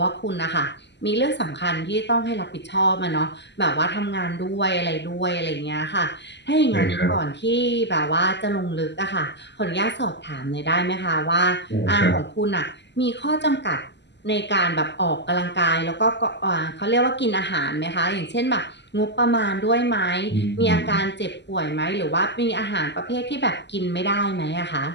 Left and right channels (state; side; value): late; right; 0.51 ms